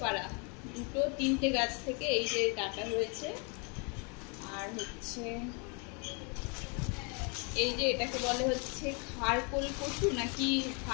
পাড়া, 2-3টে গাছ থেকে এই যে ডাঁটা হয়েছে। আর হচ্ছে এই যে এটাকে বলে হচ্ছে খারকোল কচু, নাকি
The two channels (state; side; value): quieter; right; 34.8 dB